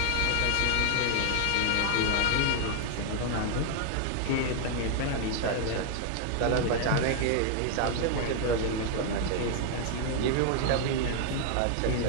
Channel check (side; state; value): both; different; correlation 0.00